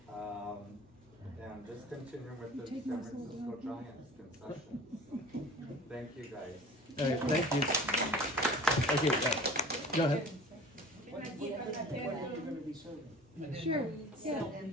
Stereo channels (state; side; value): normal; both; correlation 0.42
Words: And just continuing with the San Francisco Giants concessions. Thank you, guys. All right, thank you. Thank you. Go ahead. Sure. Yeah.